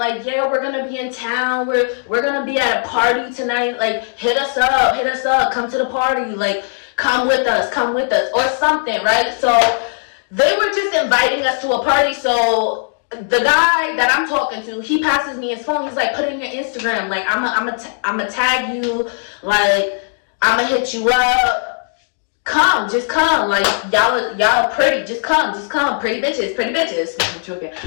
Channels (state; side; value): silent; right; digital silence